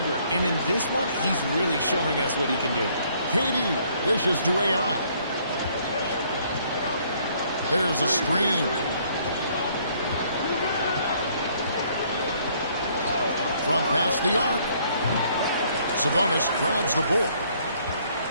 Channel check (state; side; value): inverted; both; correlation -0.64